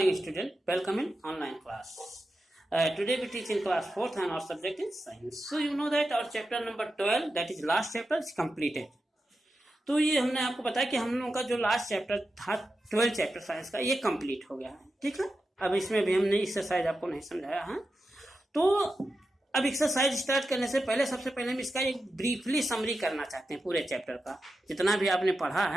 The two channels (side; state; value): both; normal; correlation 0.90